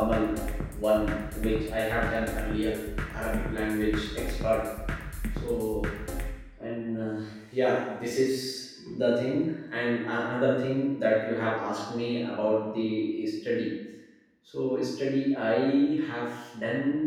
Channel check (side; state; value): both; identical; correlation 1.00